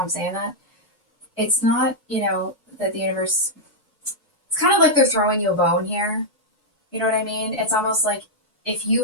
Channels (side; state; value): both; normal; correlation -0.04